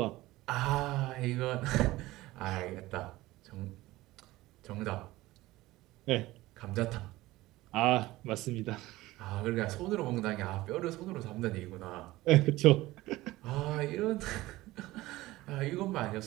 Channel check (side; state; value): left; quieter; 18.1 dB